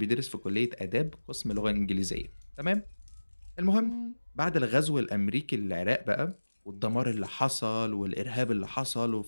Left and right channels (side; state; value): both; inverted; correlation -1.00